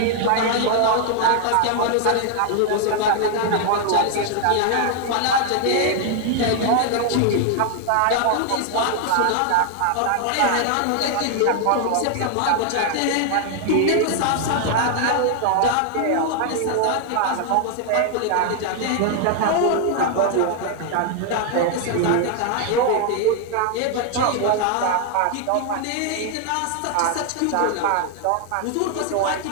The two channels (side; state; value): both; different; correlation 0.00